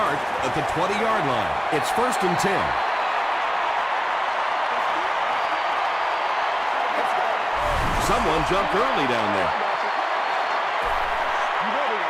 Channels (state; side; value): identical; both; correlation 1.00